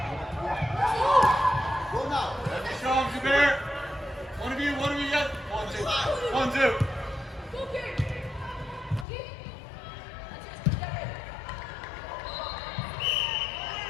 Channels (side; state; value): right; drops out; at 9.1 s